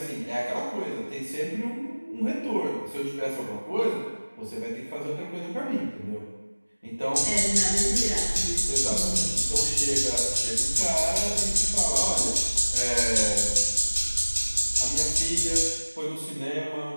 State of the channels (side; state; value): both; inverted; correlation -1.00